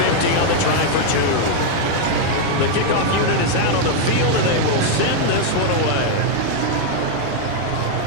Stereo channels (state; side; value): different; both; correlation 0.00